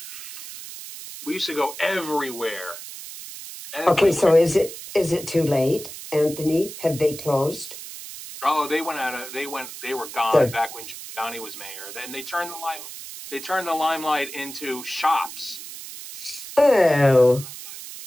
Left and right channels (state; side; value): noise; right; hiss, 12 dB below the sound